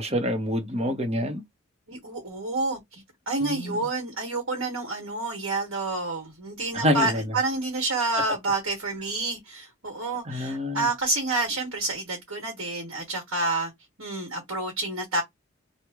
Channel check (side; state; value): both; normal; correlation 0.07